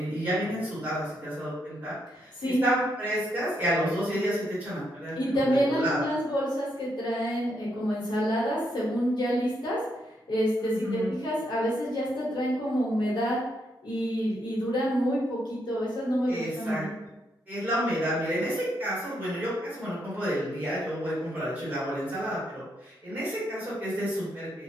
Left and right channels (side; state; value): both; normal; correlation 0.78